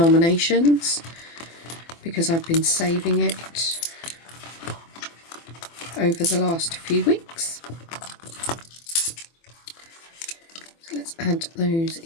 because I've been saving it over the last few weeks. So let's add those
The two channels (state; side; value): late; right; 24 ms